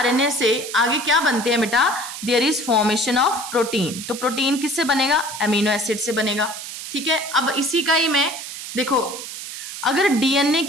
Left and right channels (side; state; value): right; noise; hiss, 9 dB below the sound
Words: से आगे क्या बनते हैं बेटा? There is formation of protein. तो प्रोटीन किससे बनेगा? अमीनो एसिड से बनेगा। ठीक है, अब इसी का ही मैं देखो अगर डीएनए